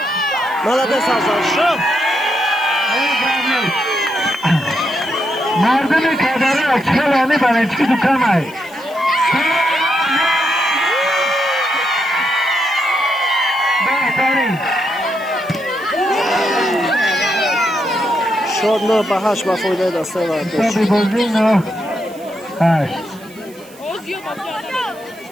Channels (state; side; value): noise; right; hiss, 23 dB below the sound